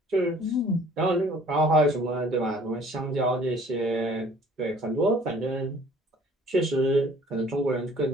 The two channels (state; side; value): normal; both; correlation 0.54